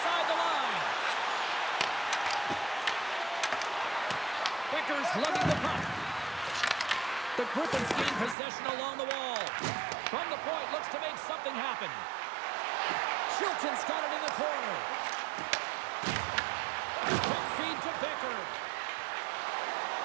the line. Becker's lugging the puck. The Griffins gain possession along the wall. From the point, looks to make something happen. Chilton's got it in the corner. Quick feed to Becker.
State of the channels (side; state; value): left; drops out; at 8.3 s